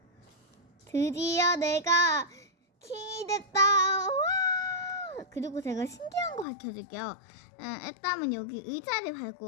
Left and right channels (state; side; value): drops out; right; at 6.5 s